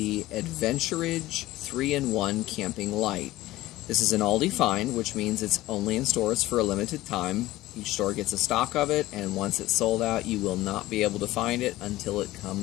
Adventuridge 3-in-1 Camping Light. This is an Aldi find, which means it's only in stores for a limited time. Each store gets a stock of it, and once it's sold out, you will not be able to find it until it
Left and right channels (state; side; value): quieter; right; 16.9 dB